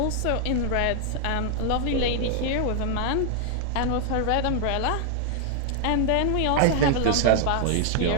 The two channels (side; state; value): both; different; correlation 0.00